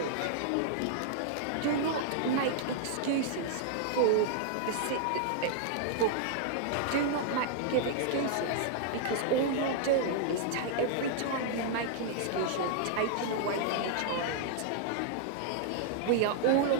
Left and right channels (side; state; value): both; different; correlation -0.01